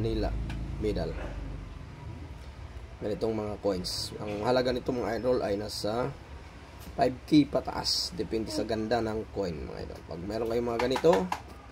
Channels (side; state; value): both; identical; correlation 1.00